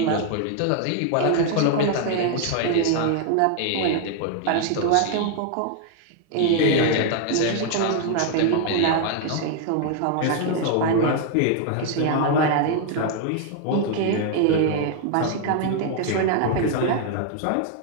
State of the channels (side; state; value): both; different; correlation 0.00